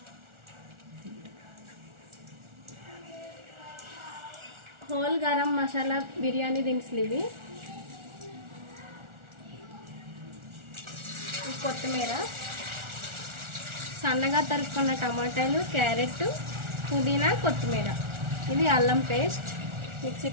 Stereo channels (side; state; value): left; late; 1.4 ms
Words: హోల్ గరం మసాలా బిర్యానీ దినుసులు, ఇవి కొత్తిమీర, సన్నగా తరుక్కున్న టమాటాలు, క్యారెట్, పుదీనా, కొత్తిమీర, ఇది అల్లం పేస్ట్ మిక్సీ